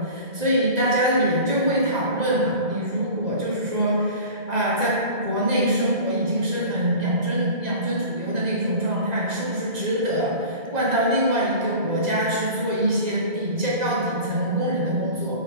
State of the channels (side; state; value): left; late; 1.9 ms